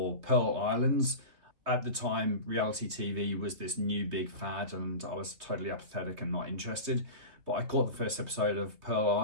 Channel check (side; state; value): left; late; 3.2 ms